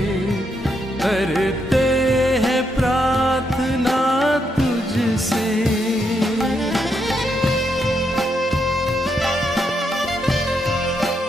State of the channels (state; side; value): normal; both; correlation 0.79